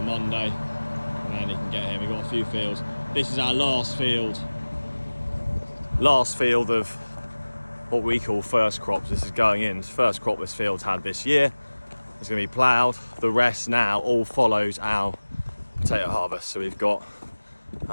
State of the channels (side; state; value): both; inverted; correlation -1.00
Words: Monday, and then you can get here. We've got a few fields. This is our last field of what we call first crops. This is going in. It's the first crop this field's had this year. It's going to be ploughed. The rest now all follows our potato harvest. So we've got,